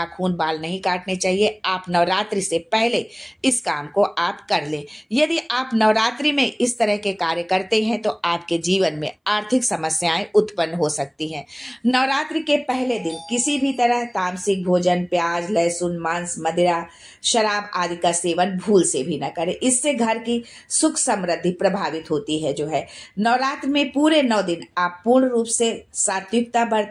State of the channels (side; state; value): both; identical; correlation 1.00